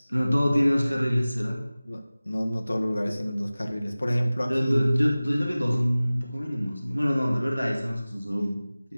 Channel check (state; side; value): inverted; both; correlation -0.98